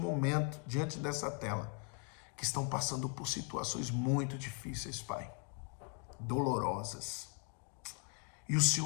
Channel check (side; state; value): right; quieter; 39.5 dB